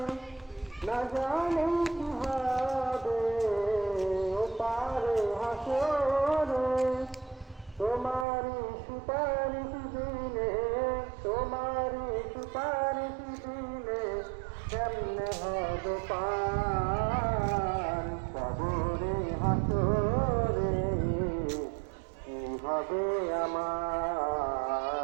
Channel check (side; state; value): left; drops out; at 8.2 s